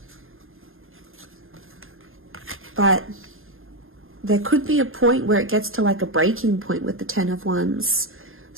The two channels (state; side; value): late; left; 0.60 ms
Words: But there could be a point where it gets to like a breaking point with the Ten of Wands.